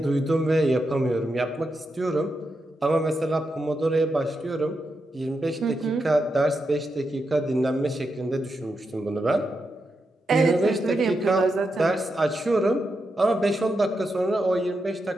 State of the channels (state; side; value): normal; both; correlation 0.86